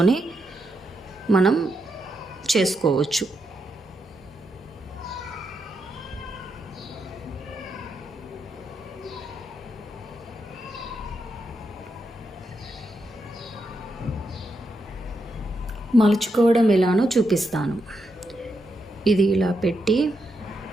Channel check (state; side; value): normal; both; correlation 0.83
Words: మనం చేసుకోవచ్చు. మలుచుకోవడం ఎలానో చూపిస్తాను. ఇది ఇలా పెట్టి